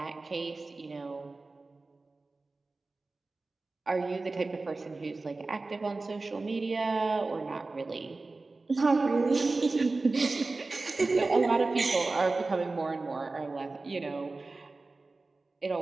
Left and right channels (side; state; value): left; quieter; 3.5 dB